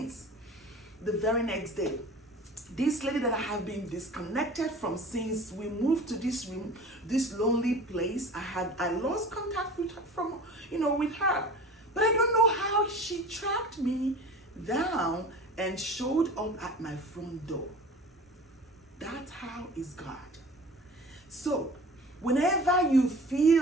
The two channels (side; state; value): both; normal; correlation 0.40